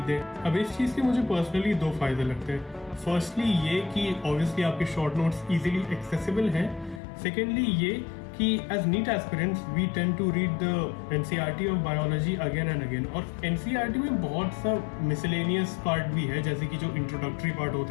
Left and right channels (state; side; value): drops out; right; at 7.0 s